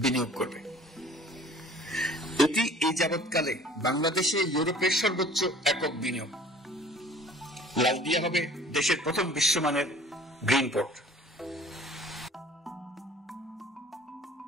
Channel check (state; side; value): normal; both; correlation 0.49